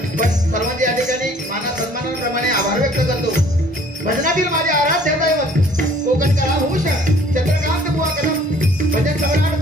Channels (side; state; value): both; normal; correlation 0.56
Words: पण सर्वांचे या ठिकाणी माना सन्मानाप्रमाणे आभार व्यक्त करतो। भजनातील माझे आराध्य दैवत कोकणकला भूषण चंद्रकांत बुवा कदम, भजन सम्राट